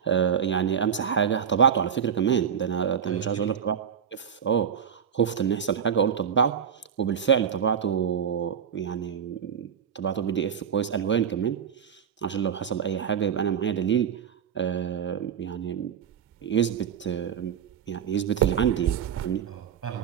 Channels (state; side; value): quieter; left; 8.0 dB